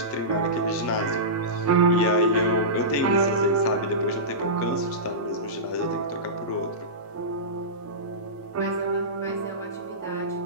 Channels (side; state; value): both; normal; correlation -0.19